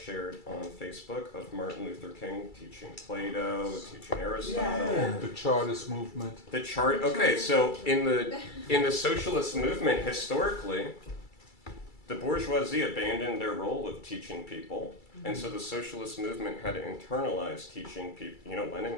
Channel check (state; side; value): late; right; 2.3 ms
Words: on Facebook of Martin Luther King teaching Plato, teaching Aristotle. The Chartist movement. Okay, so in the socialist movement, historically, the bourgeoisie abandoned their role of teaching people, and so the socialist movement had to internalize teaching people.